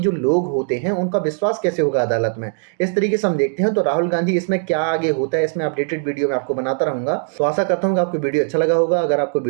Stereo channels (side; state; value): left; silent; 57 dB below the other